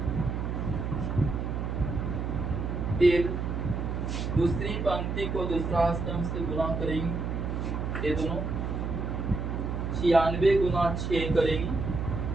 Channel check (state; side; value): noise; right; hum, 2 dB below the sound